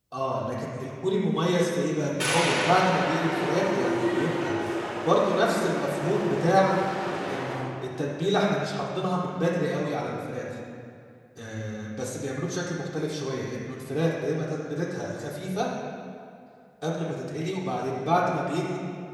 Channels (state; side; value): identical; both; correlation 1.00